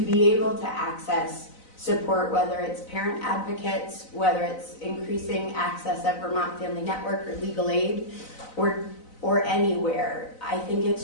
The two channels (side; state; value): right; late; 4.0 ms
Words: be able to access support, whether it's parent advocates, whether it's increasing access at Vermont Family Network or legal aid, or anywhere. I think